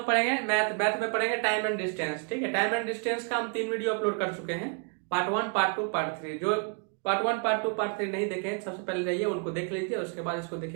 पढ़ेंगे मैथ में पढ़ेंगे टाइम एंड डिस्टेंस। ठीक है, टाइम एंड डिस्टेंस का हम 3 वीडियो अपलोड कर चुके हैं, पार्ट 1, पार्ट 2, पार्ट 3। जो पार्ट 1, पार्ट 2, पार्ट 3 नहीं देखे सबसे पहले जाइए उनको देख लीजिए, उसके बाद इसको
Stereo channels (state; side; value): quieter; left; 39.7 dB